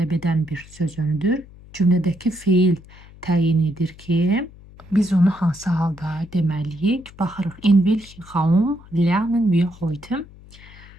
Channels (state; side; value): noise; left; hum, 21 dB below the sound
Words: edən bir söz önüdür. Cümlədəki feil təyin edir ki, biz onu hansı halda deməliyik? Baxırıq. In welchem Raum lernen wir heute?